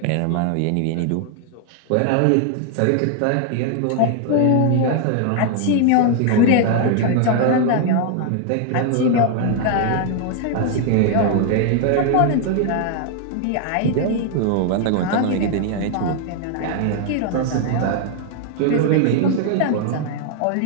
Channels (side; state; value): both; different; correlation 0.00